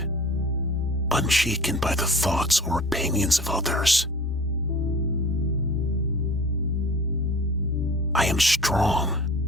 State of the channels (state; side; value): normal; both; correlation 0.42